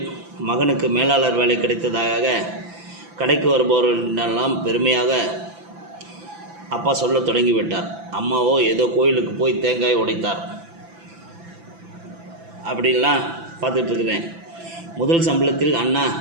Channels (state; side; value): late; left; 5.9 ms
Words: மகனுக்கு மேலாளர் வேலை கிடைத்ததாக கடைக்கு வருபவர்களெல்லாம் பெருமையாக அப்பா சொல்ல தொடங்கிவிட்டார். அம்மாவோ ஏதோ கோயிலுக்கு போய் தேங்காய் உடைத்தார். அப்படின்லாம் பார்த்துட்ருக்குறேன். முதல் சம்பளத்தில் அண்ணா